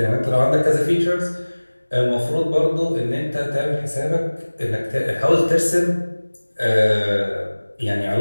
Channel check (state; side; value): inverted; both; correlation -1.00